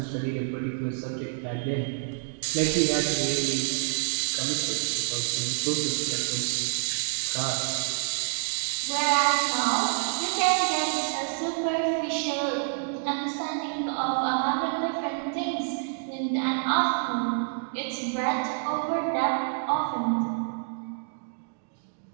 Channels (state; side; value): silent; left; digital silence